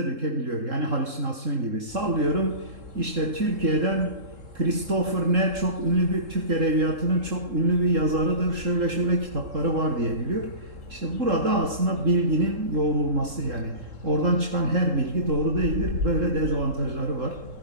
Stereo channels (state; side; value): late; left; 3.7 ms